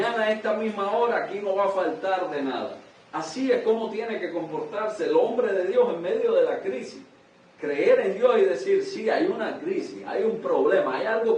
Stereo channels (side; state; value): both; identical; correlation 1.00